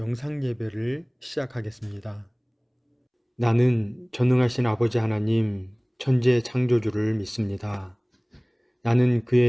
예배를 시작하겠습니다. 나는 전능하신 아버지 하나님 천재 창조주를 믿습니다. 나는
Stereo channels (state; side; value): identical; both; correlation 1.00